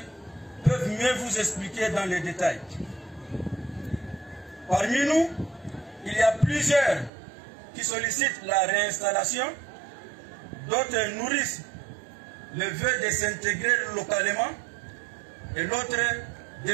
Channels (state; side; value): drops out; left; at 7.1 s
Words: peuvent mieux vous expliquer dans les détails. Parmi nous, il y a plusieurs qui sollicitent la réinstallation, d'autres nourrissent le vœu de s'intégrer localement et l'autre